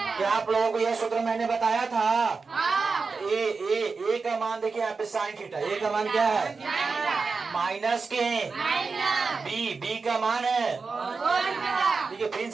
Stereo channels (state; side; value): quieter; left; 4.5 dB